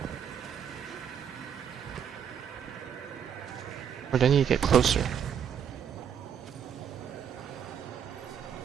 Or do I need to get closer?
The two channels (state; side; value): quieter; left; 8.2 dB